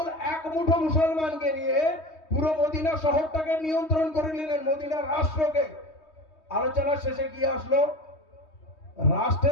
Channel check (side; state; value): right; late; 3.2 ms